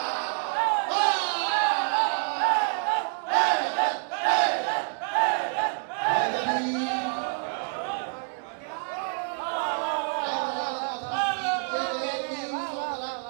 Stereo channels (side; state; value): left; quieter; 38.8 dB